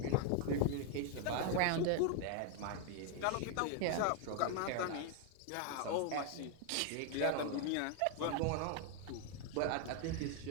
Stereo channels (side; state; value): both; different; correlation 0.00